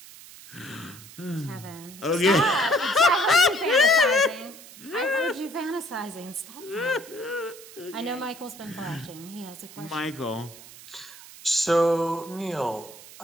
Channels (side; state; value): right; noise; hiss, 18 dB below the sound